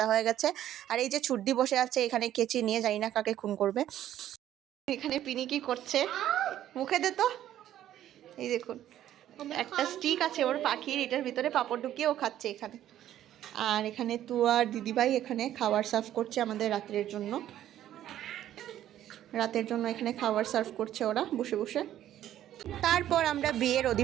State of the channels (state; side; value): quieter; left; 12.0 dB